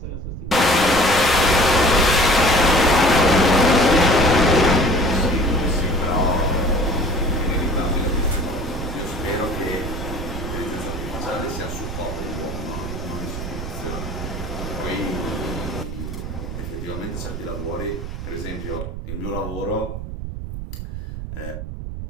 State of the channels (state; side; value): noise; right; rumble, 7 dB below the sound